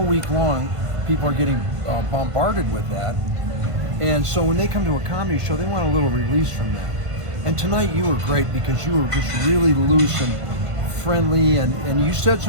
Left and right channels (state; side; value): late; left; 1.5 ms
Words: week long, people are getting bombarded with that. And so when they come to a comedy show, they want a little release from that. And tonight you were great because you were just really loose and friendly, and you said